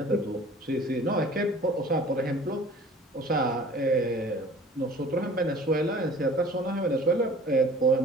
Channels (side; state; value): both; normal; correlation 0.46